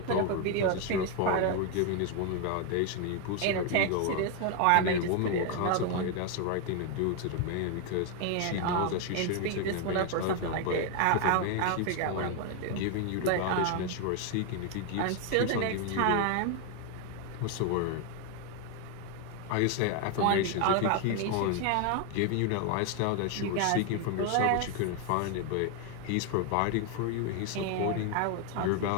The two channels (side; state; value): both; different; correlation 0.01